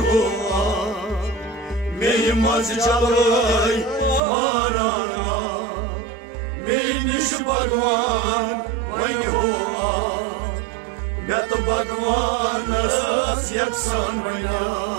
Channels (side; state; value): left; drops out; at 4.2 s